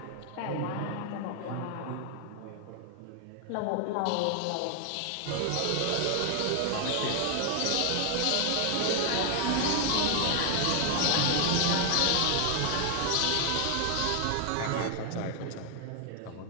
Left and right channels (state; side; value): different; both; correlation 0.00